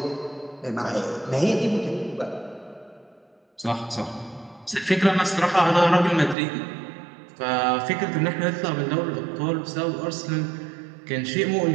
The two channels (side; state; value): left; drops out; at 6.4 s